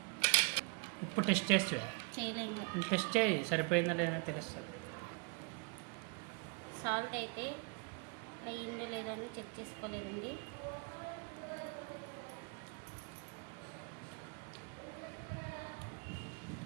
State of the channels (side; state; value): left; quieter; 31.6 dB